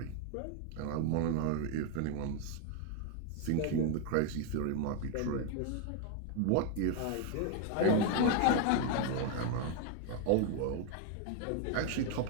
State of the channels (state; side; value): different; both; correlation 0.01